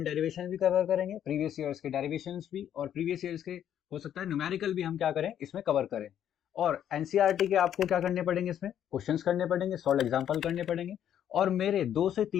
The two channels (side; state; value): right; quieter; 10.1 dB